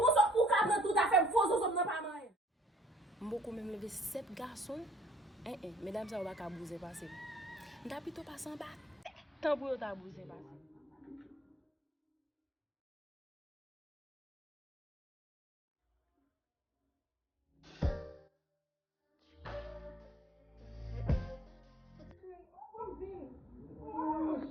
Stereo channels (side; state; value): both; normal; correlation 0.60